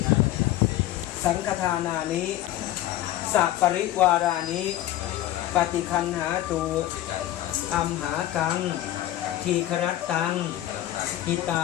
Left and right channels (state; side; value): quieter; right; 13.9 dB